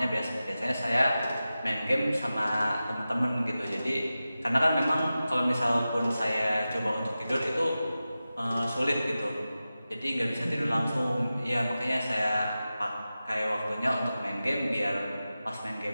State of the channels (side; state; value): both; inverted; correlation -0.94